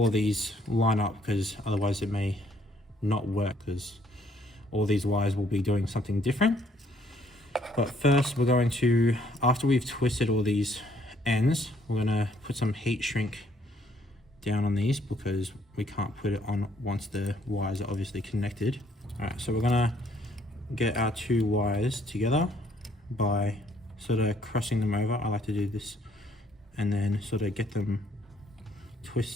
of these line up, because otherwise it may not work, because all these wires will be doing something different. But first we're going to, after we've twisted all these ends, we're going to put some heat shrink down on these, because we can't put it on once the wires are obviously connected. Alright, so we're going to get our two wires together by sort of crossing them over. I like to do this, and then sort of get them,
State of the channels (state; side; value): normal; both; correlation 0.66